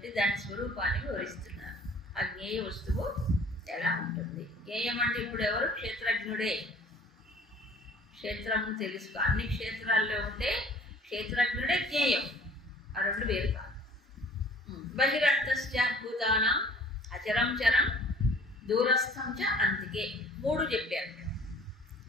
దాని స్వరూపాన్ని వివరిస్తున్నారు. ఆ జ్ఞేయ వస్తువు ఎలా ఉంటుంది? జ్ఞేయం అంటే ఇప్పుడు ఎవరు? క్షేత్రజ్ఞుడే. క్షేత్రము తెలుసుకో. అన్ని క్షేత్రాల్లో ఉండే క్షేత్రజ్ఞుడే జ్ఞేయం. ఆ రెండు వేరు కాదు. బహిరంతశ్చ భూతానాం అచరం చరం దూరస్థం చ అంతికే. మూడు చెప్పారు.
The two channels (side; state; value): both; normal; correlation 0.51